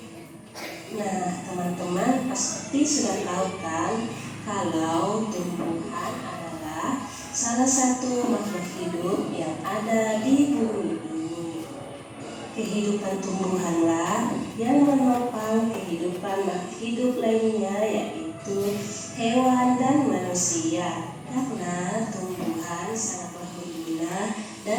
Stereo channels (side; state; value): both; identical; correlation 1.00